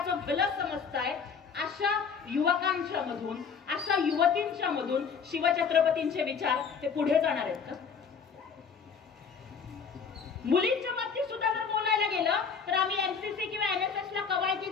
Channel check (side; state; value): right; quieter; 6.1 dB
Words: भलं समजताय, अशा युवकांच्या मधून, अशा युवतींच्या मधून शिवछत्रपतींचे विचार हे पुढे जाणार आहेत का? मुलींच्या बाबतीत सुद्धा जर बोलायला गेलं तर आम्ही एमसीसी किंवा एनएसएस ला